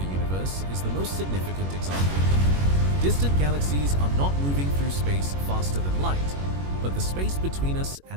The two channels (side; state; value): left; late; 21 ms